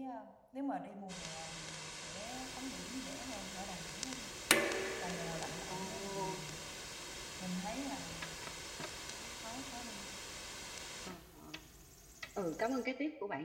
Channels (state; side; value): identical; both; correlation 1.00